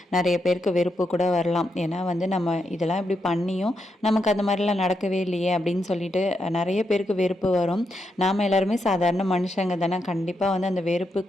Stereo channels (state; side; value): normal; both; correlation 0.82